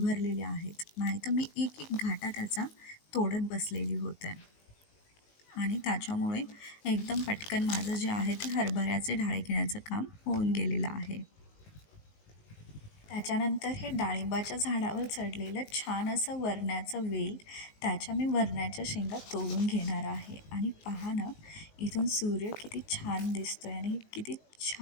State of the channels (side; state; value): right; late; 19 ms